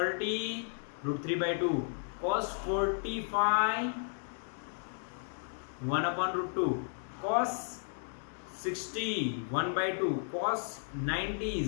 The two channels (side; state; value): right; silent; 55 dB below the other